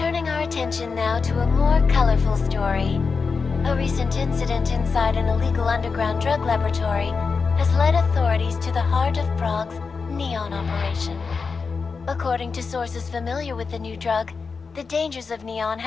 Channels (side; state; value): right; quieter; 4.9 dB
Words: our attention now to a more colorful story. A recent incident inside an illegal underground drug laboratory has led authorities to the heart of Prague's Neon operation. According to sources familiar with the new drug, the dangers of Neon